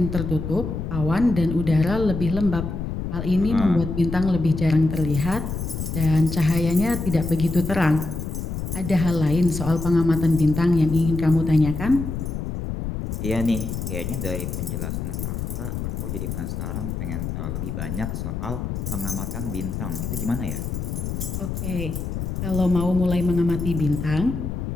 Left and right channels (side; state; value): left; noise; rumble, 4 dB below the sound